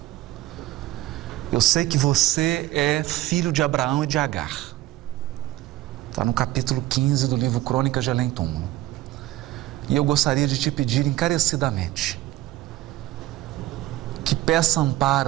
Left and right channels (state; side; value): quieter; left; 16.0 dB